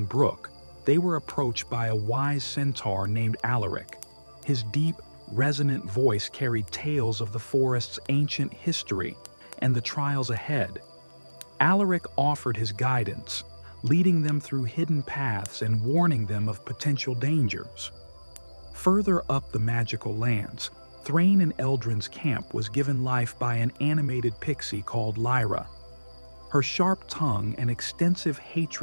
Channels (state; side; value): inverted; both; correlation -1.00